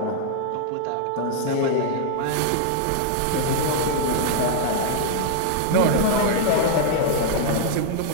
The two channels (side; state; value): both; different; correlation -0.01